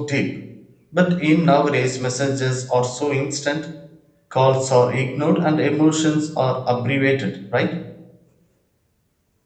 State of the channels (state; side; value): identical; both; correlation 1.00